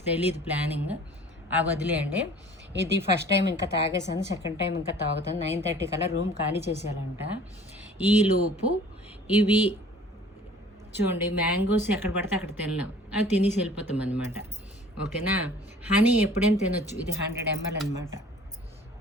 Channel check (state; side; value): normal; both; correlation 0.49